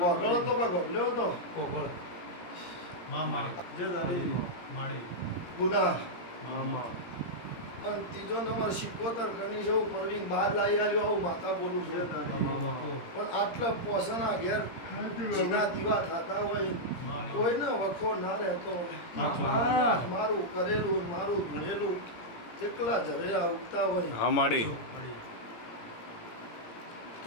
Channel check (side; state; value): right; late; 17 ms